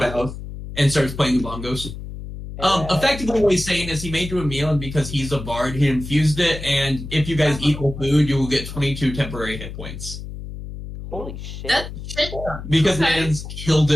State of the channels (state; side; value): noise; left; hum, 10 dB below the sound